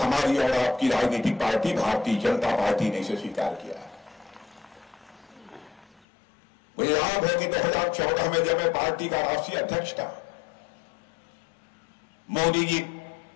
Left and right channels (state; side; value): drops out; right; at 6.0 s